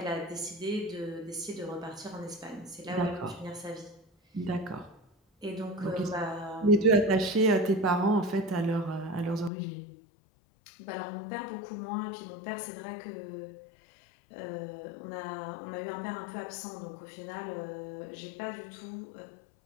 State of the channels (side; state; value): right; drops out; at 9.5 s